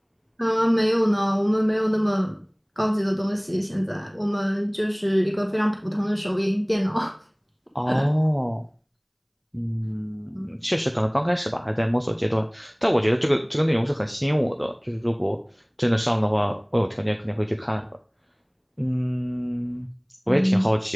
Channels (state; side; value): identical; both; correlation 1.00